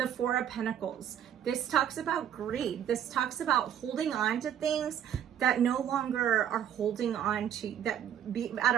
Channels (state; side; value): quieter; left; 9.7 dB